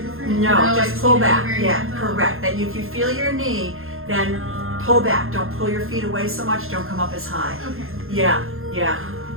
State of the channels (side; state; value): left; late; 0.60 ms